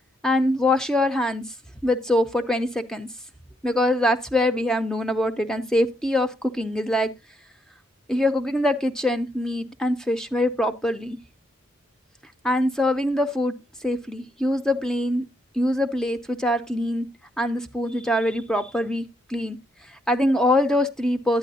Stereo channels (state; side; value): normal; both; correlation 0.77